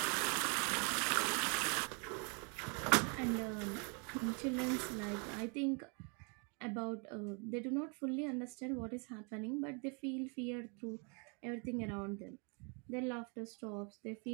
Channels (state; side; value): quieter; left; 35.5 dB